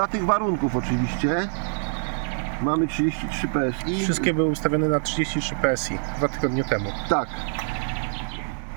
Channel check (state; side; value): silent; left; 61 dB below the other